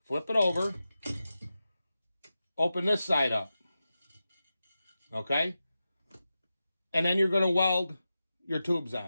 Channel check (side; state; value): both; inverted; correlation -0.93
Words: flip it over, open this side up. Okay? And then you're going to weld your tubes